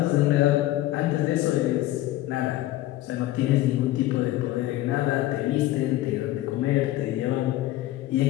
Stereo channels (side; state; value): right; quieter; 15.7 dB